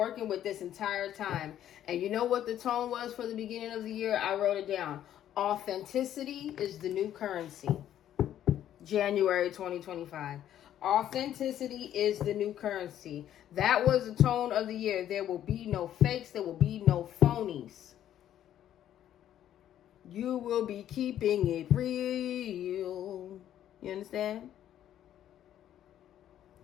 with this entire time. And you know what the tone was for the beginning of the year? I wrote it down. Authenticity is the new currency. January 2025. Authenticity is the new currency. That was the tone of the year. There will be no fakes. There will be no phonies. You will be keeping it real. You understand?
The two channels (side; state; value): right; quieter; 11.2 dB